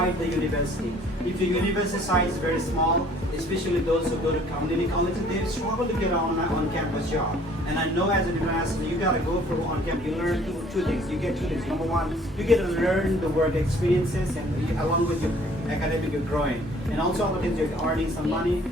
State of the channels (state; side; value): normal; both; correlation 0.56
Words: the university. If your university size is very small, especially those who go to community colleges, they struggle to get on-campus job. And I know as an international, you gotta go for on-campus. You learn two things. You get two things. Number one, you get to learn the work experiences, and along with your academic, you're growing. And also other things, you're earning some money,